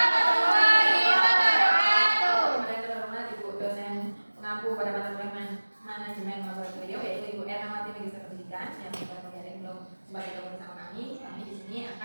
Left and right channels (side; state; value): both; inverted; correlation -1.00